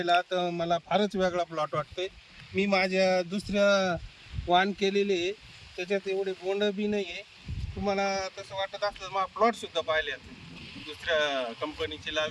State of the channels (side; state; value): both; identical; correlation 1.00